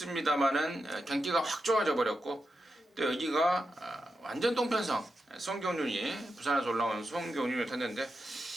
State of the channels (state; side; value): normal; both; correlation 0.88